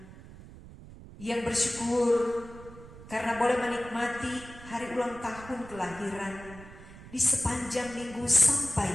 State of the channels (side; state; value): right; noise; rumble, 17 dB below the sound